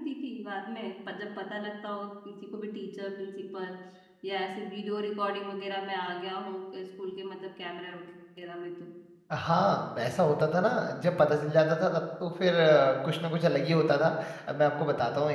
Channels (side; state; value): both; identical; correlation 1.00